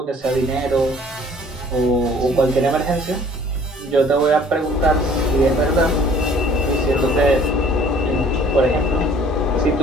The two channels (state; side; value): normal; both; correlation 0.54